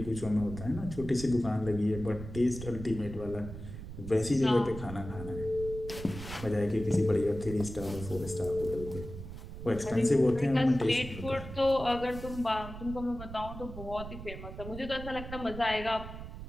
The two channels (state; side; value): noise; right; rumble, 10 dB below the sound